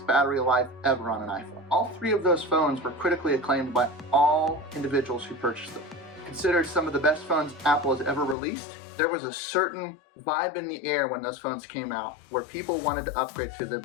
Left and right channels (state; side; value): drops out; right; at 8.3 s